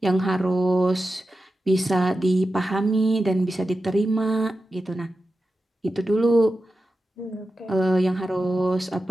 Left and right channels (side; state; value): both; normal; correlation 0.92